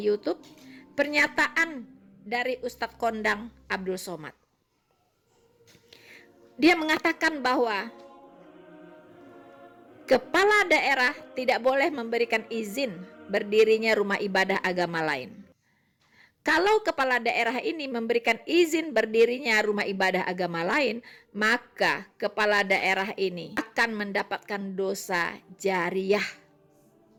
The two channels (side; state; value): both; identical; correlation 1.00